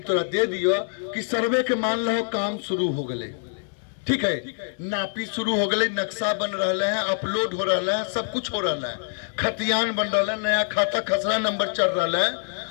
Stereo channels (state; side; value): silent; right; 62 dB below the other